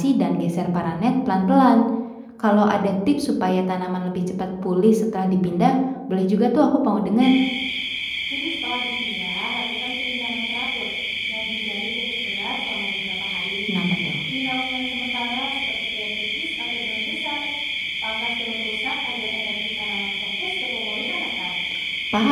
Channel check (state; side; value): identical; both; correlation 1.00